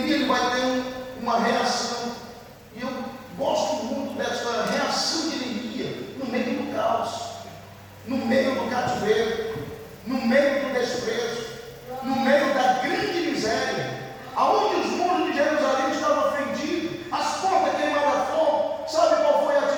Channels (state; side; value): identical; both; correlation 1.00